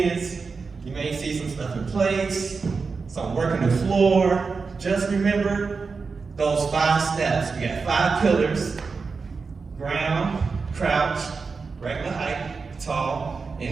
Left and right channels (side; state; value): left; quieter; 4.7 dB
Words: You may see some stuff in place, some working the floor. Just remember those 5 steps. We got 5 pillars: ground, crouch, regular height, tall, in